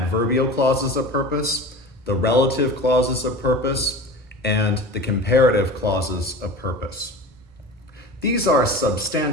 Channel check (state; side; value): normal; both; correlation 0.34